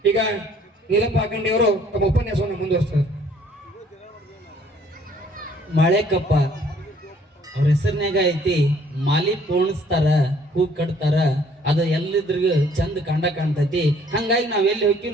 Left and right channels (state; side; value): normal; both; correlation 0.60